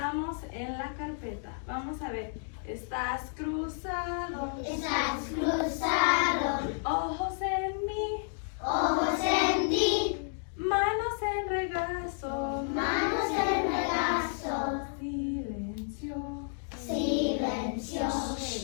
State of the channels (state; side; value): silent; right; 57 dB below the other